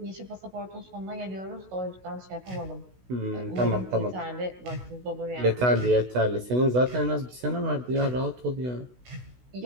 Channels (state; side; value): late; left; 16 ms